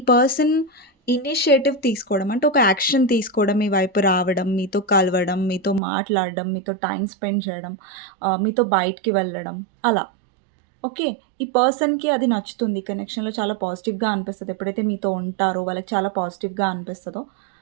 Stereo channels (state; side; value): drops out; left; at 5.8 s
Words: పర్సన్ ఇనిషియేటివ్ తీసుకోవడం అంటే ఒక యాక్షన్ తీసుకోవడం, మీ వైపు రావడం, మీతో కలవడం, మీతో మాట్లాడడం, మీతో టైం స్పెండ్ చేయడం, మీతో బయటికి వెళ్ళడం అలా. ఓకే, ఈ పర్సన్కి అది నచ్చుతుంది. కనెక్షన్లో చాలా పాజిటివ్గా అనిపిస్తుంది. ఎప్పుడైతే మీతో ఉంటారో వాళ్ళకి చాలా పాజిటివ్గా అనిపిస్తుందో